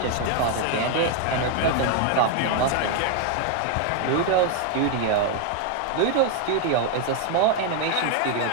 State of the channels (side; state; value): both; different; correlation 0.00